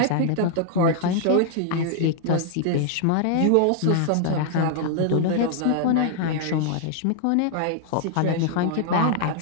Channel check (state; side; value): different; both; correlation -0.01